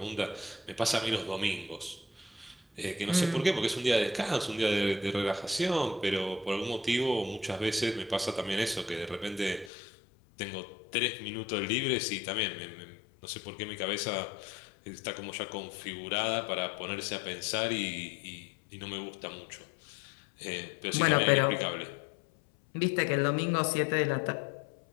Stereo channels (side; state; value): right; drops out; at 9.7 s